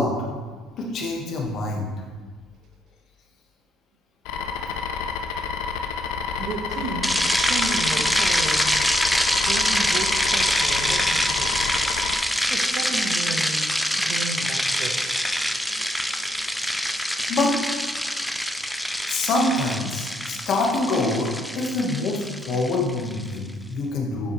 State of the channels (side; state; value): both; normal; correlation 0.77